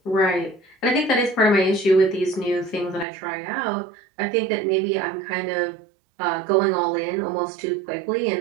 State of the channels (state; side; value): drops out; left; at 3.1 s